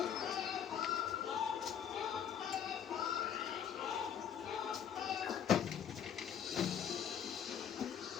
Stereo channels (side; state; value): right; quieter; 8.5 dB